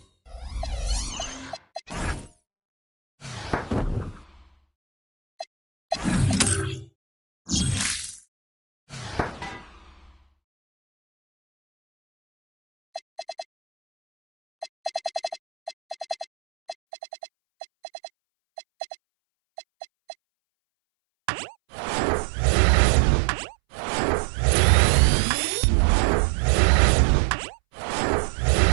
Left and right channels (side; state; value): left; drops out; at 16.8 s